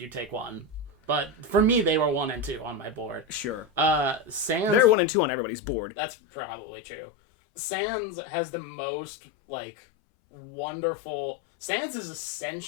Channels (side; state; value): right; drops out; at 5.0 s